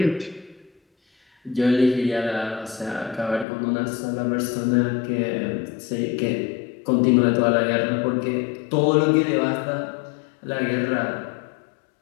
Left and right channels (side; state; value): right; drops out; at 3.5 s